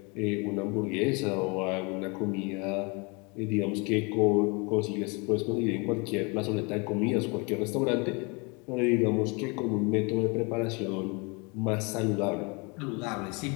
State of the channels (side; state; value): right; quieter; 30.3 dB